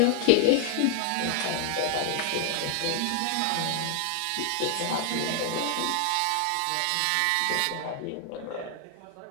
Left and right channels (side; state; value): both; different; correlation 0.00